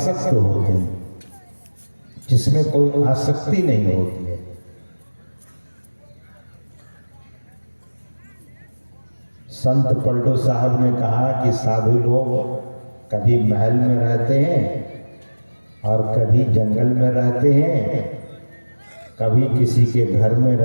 होते हैं। जिसमें कोई आसक्ति नहीं होती है। संत पलटू साहब ने कहा कि साधु लोग कभी महल में रहते हैं और कभी जंगल में रहते हैं, कभी किसी के घर में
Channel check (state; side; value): inverted; both; correlation -1.00